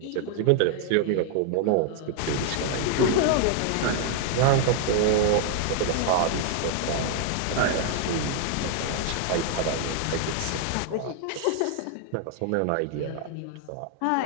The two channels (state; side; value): different; both; correlation 0.00